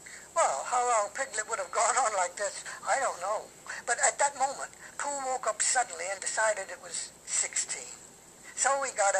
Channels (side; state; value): both; identical; correlation 1.00